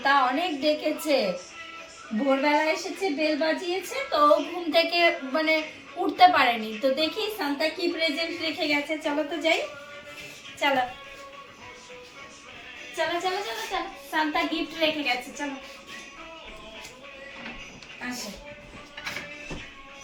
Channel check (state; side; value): identical; both; correlation 1.00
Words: অনেক ডেকেছে। ভোরবেলা এসেছে, বেল বাজিয়েছে, তো ঘুম থেকে মানে উঠতে পারেনি। তো দেখি সান্তা কি প্রেজেন্ট রেখে গেছে। চলো তো যাই, চলো চলো চলো চলো চলো। সান্তা গিফট রেখে গেছে, চলো আসো।